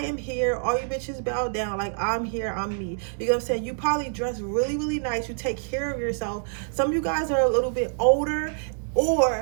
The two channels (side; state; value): left; silent; 61 dB below the other